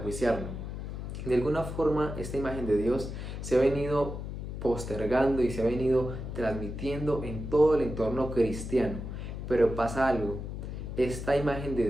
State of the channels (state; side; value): noise; left; hum, 7 dB below the sound